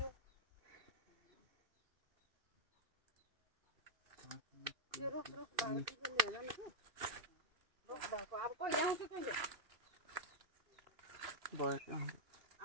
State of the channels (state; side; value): late; left; 2.5 ms